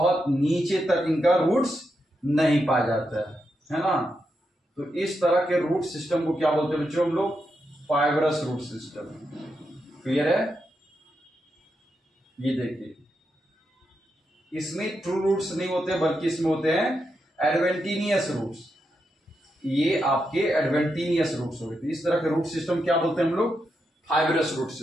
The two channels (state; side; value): normal; both; correlation 0.85